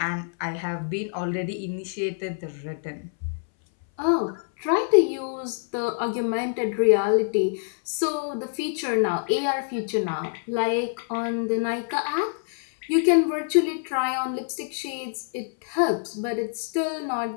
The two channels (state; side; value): silent; right; 59 dB below the other